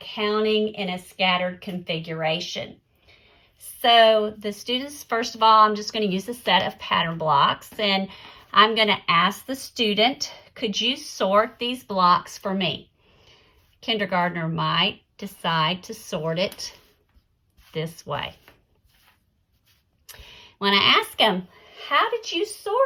counting in a scattered configuration. So the students, first of all, I'm just going to use a set of pattern blocks, and I'm going to ask the student, could you sort these blocks for me? Kindergartner might decide to sort it this way. When I ask them, how did you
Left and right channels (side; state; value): both; identical; correlation 1.00